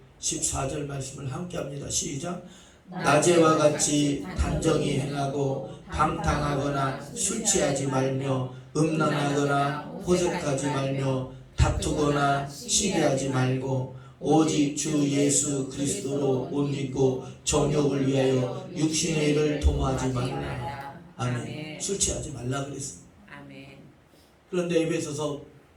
14절 말씀을 함께 합니다. 시작. 낮에와 같이 단정히 행하고 방탕하거나 술 취하지 말며 음란하거나 호색하지 말며 다투거나 시기하지 말고 오직 주 예수 그리스도로 옷 입고 정욕을 위하여 육신의 일을 도모하지 말라. 아멘. 술 취하지 말라 그랬습니다. 아멘. 그런데 에베소서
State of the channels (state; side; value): identical; both; correlation 1.00